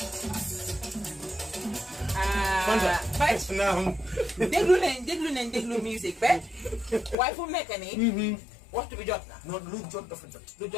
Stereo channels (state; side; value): drops out; right; at 7.2 s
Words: déglu musique ba waaye fu mu nekk nii waxtu bi jot na. non lu jot dafa jot. lu